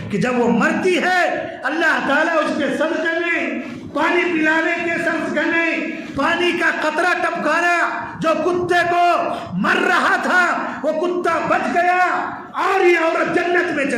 کہ جب وہ مرتی ہے اللہ تعالیٰ اس کے صدقے میں پانی پلانے کے صدقے میں پانی کا قطرہ ٹپکانا، جو کتے کو مر رہا تھا وہ کتا بچ گیا اور یہ عورت جنت میں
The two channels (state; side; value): identical; both; correlation 1.00